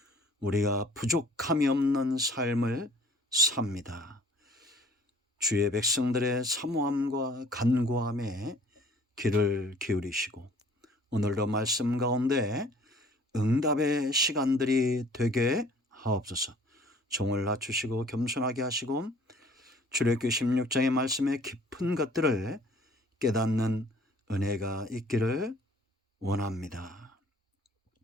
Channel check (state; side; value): normal; both; correlation 0.53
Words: 우리가 부족함이 없는 삶을 삽니다. 주의 백성들의 사모함과 간구함에 귀를 기울이시고 오늘도 말씀 가운데 응답의 시간들이 되게 하옵소서. 종을 낮추시고 겸손하게 하시고 출애굽기 16장의 말씀의 깊은 것들을 깨닫는 은혜가 있기를 원합니다.